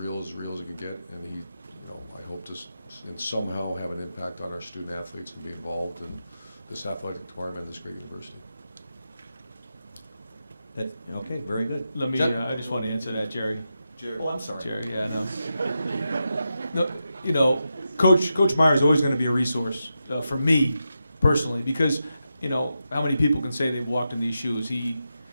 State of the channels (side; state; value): both; inverted; correlation -0.88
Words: as it can get, and he, I hope to somehow have an impact on our student athletes and be involved in this athletic department at this great university. Okay, very good. Let me, I just want to answer that, Jerry. Oh, I'm sorry. Jerry, yeah, no. No, Coach Meyer is always going to be a resource for me personally, because how many people can say they've walked in these shoes?